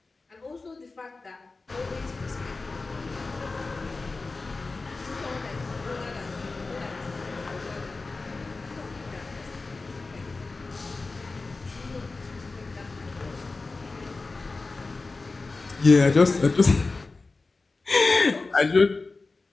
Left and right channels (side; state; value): right; quieter; 3.7 dB